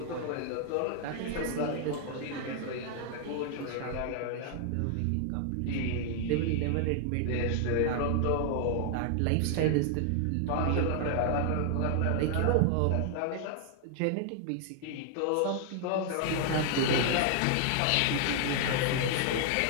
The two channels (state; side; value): different; both; correlation 0.00